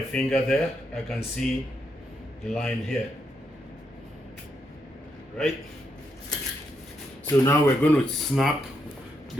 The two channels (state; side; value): normal; both; correlation 0.80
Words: finger there. I can see the line here, right? So now we're going to snap